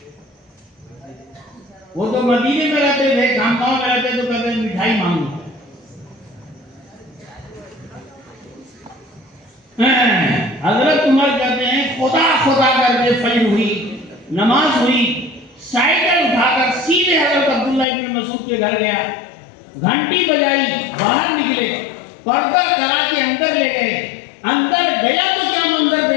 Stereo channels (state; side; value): drops out; right; at 17.9 s